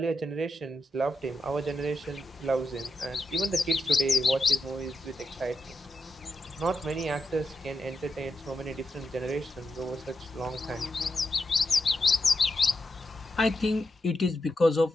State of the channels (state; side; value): normal; both; correlation 0.85